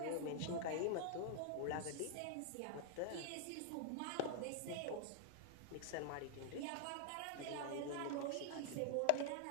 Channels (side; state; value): both; different; correlation 0.00